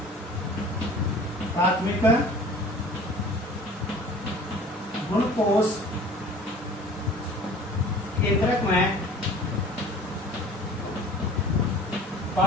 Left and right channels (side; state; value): both; normal; correlation 0.45